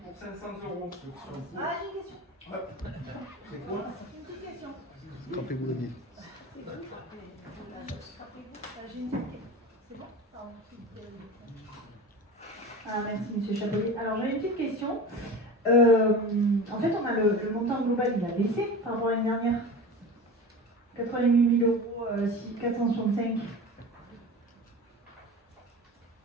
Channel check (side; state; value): both; normal; correlation 0.32